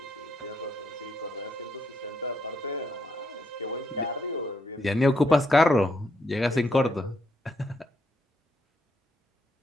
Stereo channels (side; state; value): both; normal; correlation 0.76